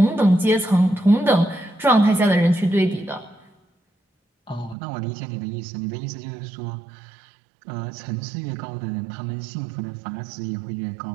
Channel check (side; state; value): left; drops out; at 4.8 s